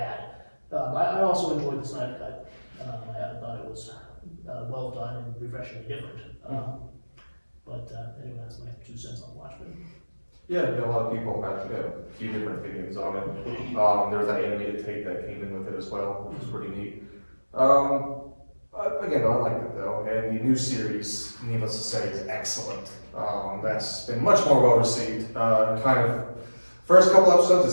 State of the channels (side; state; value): both; inverted; correlation -1.00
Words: I also enjoyed the Snyder Cut. I thought it was well done and refreshingly different. But anyway, that's my 2 cents on Watchmen. Yeah, a lot of people had a few different opinions on it. There was that animated tape that came in with it as well, which was pretty neat. Again, I liked it though, and the new series, needless to say, is excellent. That's been much more well received. First couple episodes,